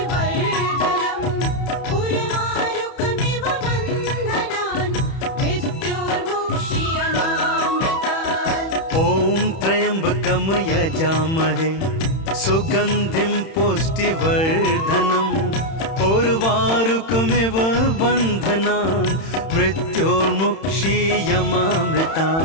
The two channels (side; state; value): right; late; 31 ms